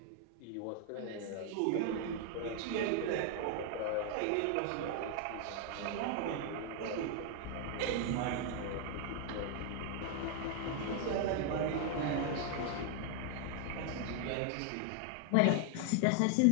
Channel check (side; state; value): both; different; correlation 0.00